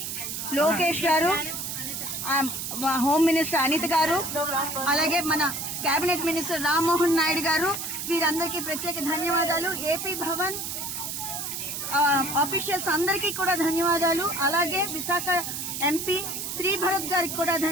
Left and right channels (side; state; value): right; noise; hiss, 5 dB below the sound